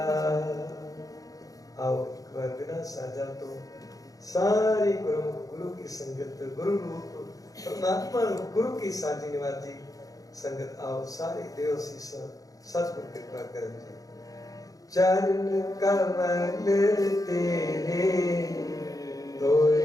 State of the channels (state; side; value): late; right; 0.17 ms